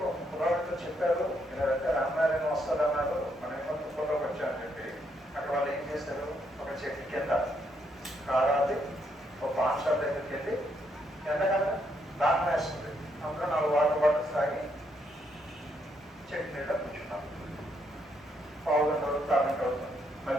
కుర్రాడితో చెప్పారు ఇలాంటే రామాయణం వస్తుందన్నారు, మనమేమో తుప్పల్లోకి వచ్చామని చెప్పి అక్కడ వాళ్ళు ఏం చేశారు, ఒక చెట్టు కింద కారాది ఒక పాన్ షాప్ దగ్గరికి వెళ్ళి ఎంతకన్నా దాహం వేస్తుంది, అందులో 4 వాటర్ బాటిల్స్ తాగి చెట్టు నీళ్ళ కూర్చున్నాం. పావుగంట అవుతుంది, అరగంట అవుతుంది.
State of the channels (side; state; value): both; normal; correlation 0.75